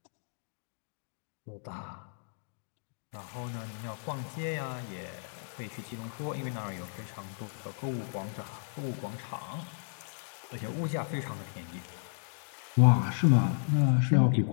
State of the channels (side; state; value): right; silent; digital silence